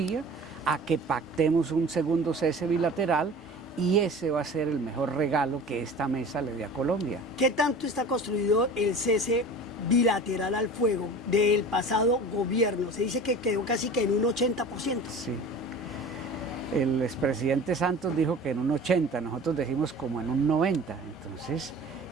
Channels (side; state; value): both; normal; correlation 0.39